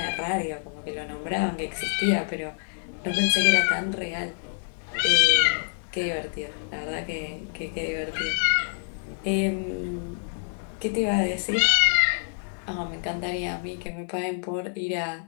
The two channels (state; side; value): silent; right; 60 dB below the other